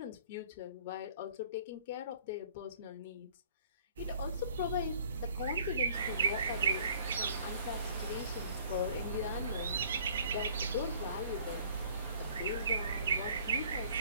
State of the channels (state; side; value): inverted; both; correlation -0.55